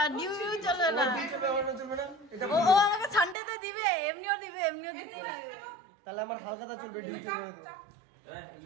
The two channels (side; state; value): left; drops out; at 3.4 s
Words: ডিউ চলবে না। ও আমাকে সানডেতে দিবে, এমনিও দিতেই লাগে। তাহলে আমার হালকাটা চলবে।